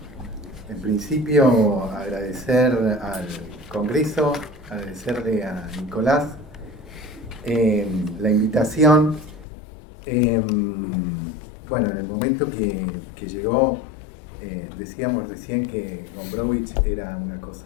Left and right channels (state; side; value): drops out; right; at 9.5 s